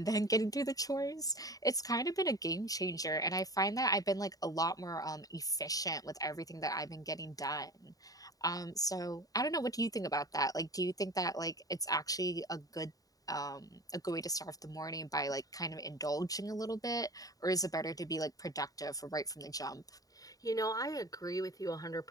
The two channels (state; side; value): late; right; 0.18 ms